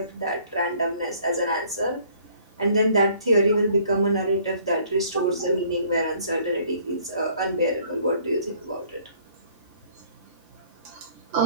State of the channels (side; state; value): both; inverted; correlation -0.58